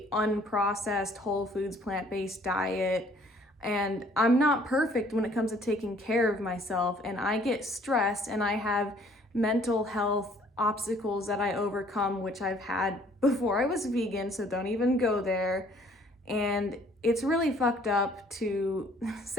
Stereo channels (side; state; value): both; normal; correlation 0.59